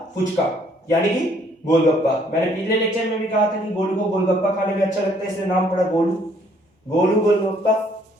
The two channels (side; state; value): both; normal; correlation 0.64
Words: फुचका, यानी कि गोलगप्पा। मैंने पिछले लेक्चर में भी कहा था कि गोलू को गोलगप्पा खाने में अच्छा लगता है, इसलिए नाम पड़ा गोलू, गोलू गोलगप्पा।